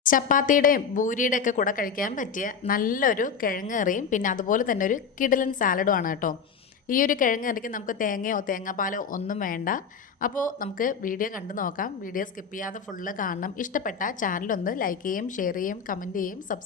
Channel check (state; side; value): quieter; right; 6.2 dB